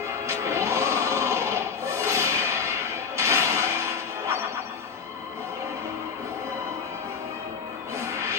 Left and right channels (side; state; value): right; quieter; 6.0 dB